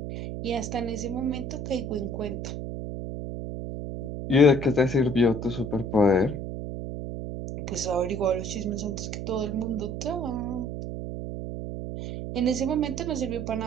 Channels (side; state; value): right; noise; hum, 6 dB below the sound